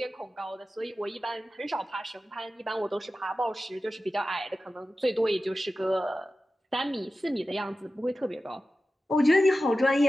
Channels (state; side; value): normal; both; correlation 0.94